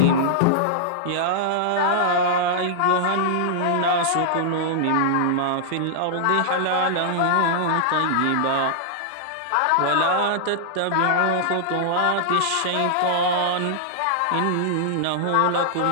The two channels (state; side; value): different; both; correlation -0.01